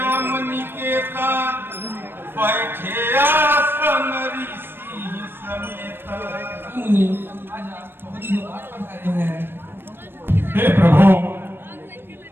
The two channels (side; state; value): left; late; 0.10 ms